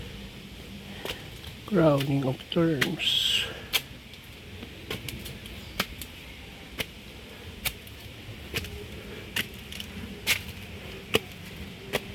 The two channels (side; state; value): both; identical; correlation 1.00